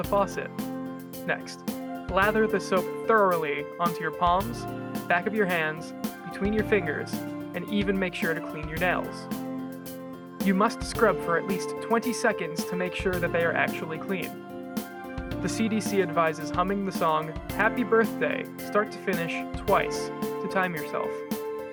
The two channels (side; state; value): both; identical; correlation 1.00